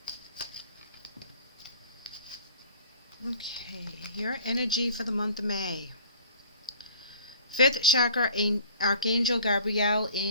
Okay, your energy for the month of May. Fifth chakra, Archangel Gabriel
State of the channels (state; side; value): inverted; both; correlation -0.47